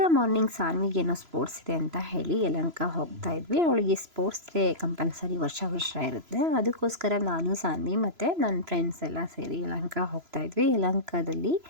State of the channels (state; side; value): late; left; 3.0 ms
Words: ಮಾರ್ನಿಂಗ್ ಸಾನ್ವಿಗೇನೋ ಸ್ಪೋರ್ಟ್ಸ್ ಇದೆ ಅಂತ ಹೇಳಿ ಯಲಹಂಕ ಹೋಗ್ತಾ ಇದ್ವಿ. ಅವಳಿಗೆ ಸ್ಪೋರ್ಟ್ಸ್ ಡೇ ಕಂಪಲ್ಸರಿ ವರ್ಷ ಇರುತ್ತೆ. ಅದಕ್ಕೋಸ್ಕರ ನಾನು ಸಾನ್ವಿ ಮತ್ತು ನನ್ನ ಫ್ರೆಂಡ್ಸ್ ಎಲ್ಲ ಸೇರಿ ಯಲಹಂಕ ಹೋಗ್ತಾ ಇದ್ವಿ. ಯಲಹಂಕದಲ್ಲಿ